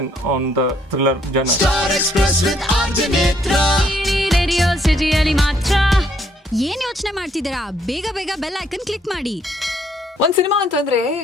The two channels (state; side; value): normal; both; correlation 0.68